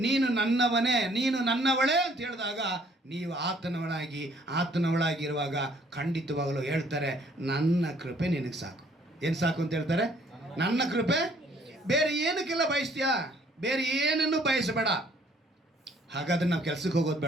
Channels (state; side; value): normal; both; correlation 0.61